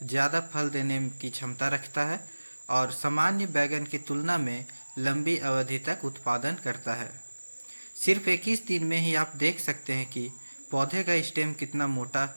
ज़्यादा फल देने की क्षमता रखता है और सामान्य बैगन की तुलना में लंबी अवधि तक उत्पादन करता है। सिर्फ 21 दिन में ही आप देख सकते हैं कि पौधे का स्टेम कितना मोटा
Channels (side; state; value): both; inverted; correlation -1.00